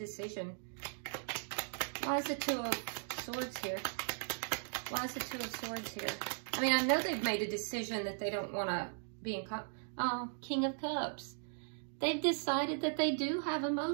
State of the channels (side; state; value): left; silent; digital silence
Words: Why is the Two of Swords here? Why is the Two of Swords here? I mean, I know they've made a decision that they don't want to be in... King of Cups. They've decided that they do have